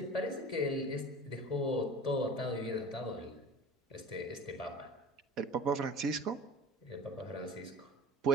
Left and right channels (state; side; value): normal; both; correlation 0.40